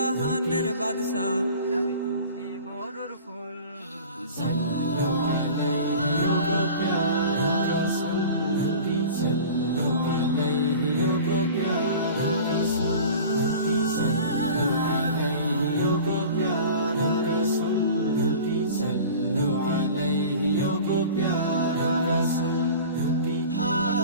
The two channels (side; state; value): both; inverted; correlation -0.40